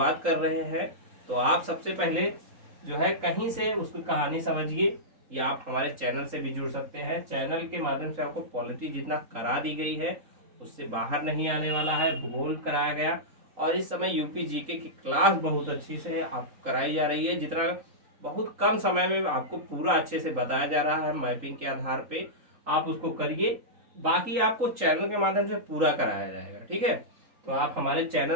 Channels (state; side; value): late; left; 3.8 ms